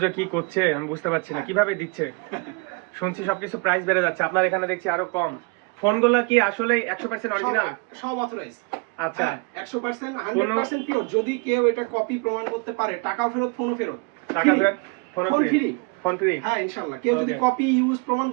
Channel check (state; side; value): quieter; left; 30.0 dB